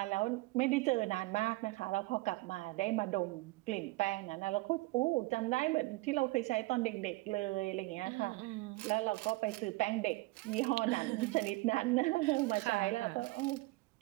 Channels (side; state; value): left; quieter; 21.9 dB